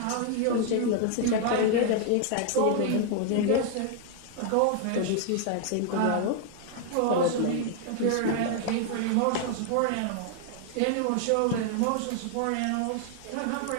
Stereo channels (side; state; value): both; different; correlation 0.00